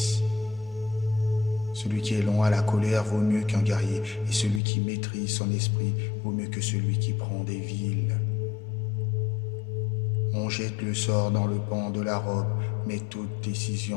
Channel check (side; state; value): right; drops out; at 4.6 s